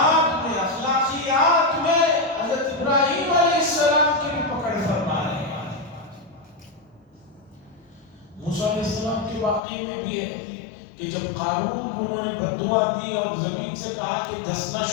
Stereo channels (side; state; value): right; drops out; at 9.6 s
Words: میں, اخلاقیات میں حضرت ابراہیم علیہ السلام کی بھی پکڑ فرما رہے ہیں. موسیٰ علیہ السلام کے واقعے میں بھی ہے کہ جب قارون کو انہوں نے بددعا دی اور زمین سے کہا کہ دھسنا